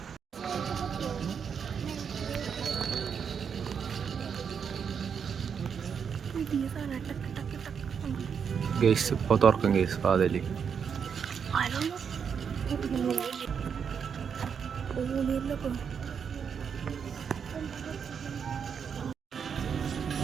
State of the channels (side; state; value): left; quieter; 6.9 dB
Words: ഗൈസ് ഇപ്പോൾ തുറക്കും ഗൈസ് വാതിൽ.